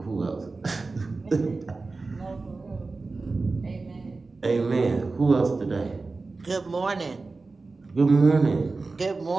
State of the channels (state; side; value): quieter; left; 3.8 dB